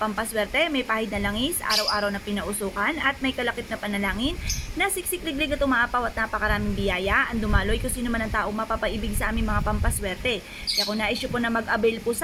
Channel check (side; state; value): both; identical; correlation 1.00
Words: may pahid na langis, araw-araw na pinausukan at may kalakip na panalangin na siksik-liglig at umaapaw at napakaraming biyaya ang dumaloy kung sino man ang taong mapapaibig sa aming mga pampaswerte. Kaya kung na-issue po na mag-avail po